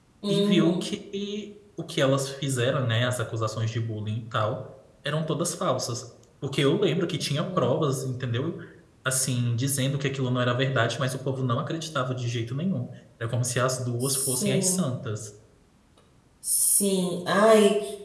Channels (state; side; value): identical; both; correlation 1.00